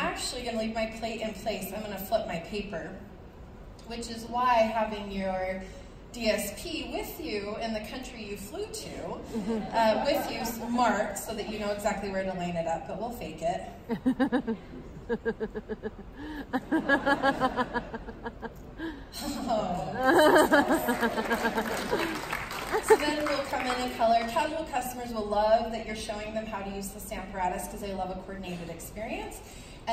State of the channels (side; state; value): both; identical; correlation 1.00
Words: going to leave my plate in place. I'm going to flip my paper, which is why having your DSP with you in the country you flew to, with you marked so that you know exactly where to line it up, but we'll fake it. So then we'll come in and color. Casual customers will love that you're showing them how to use the Stamparatus because they love a coordinated experience.